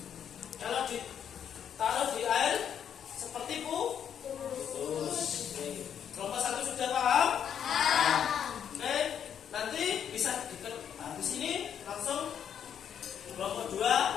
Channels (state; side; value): quieter; right; 8.7 dB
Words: Kalau ditaruh di air seperti putus. Kelompok 1 sudah paham? Oke, nanti bisa habis ini langsung kelompok 2